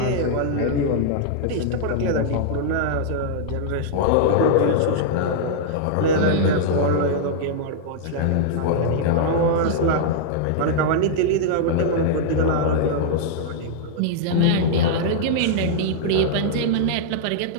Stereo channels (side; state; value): both; different; correlation -0.02